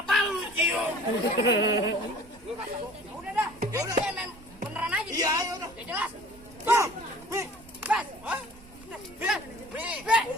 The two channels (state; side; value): noise; right; rumble, 22 dB below the sound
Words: lu cium. Ya udah dah. Ya udah main beneran aja. Iya, ayo dah. Ya jelas. Bang, nih. Bas. Hah?